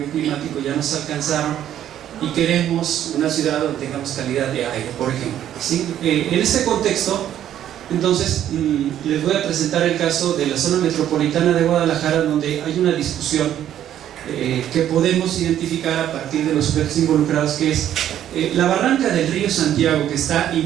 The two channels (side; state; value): left; quieter; 11.1 dB